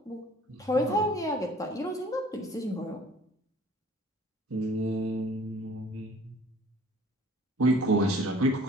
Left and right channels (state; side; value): normal; both; correlation 0.51